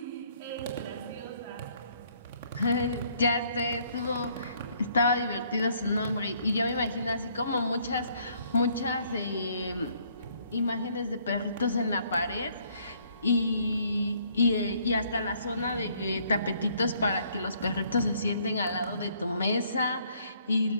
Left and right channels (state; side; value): inverted; both; correlation -0.65